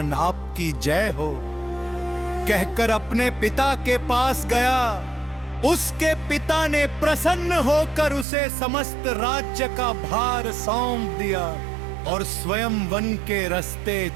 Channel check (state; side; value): drops out; left; at 8.2 s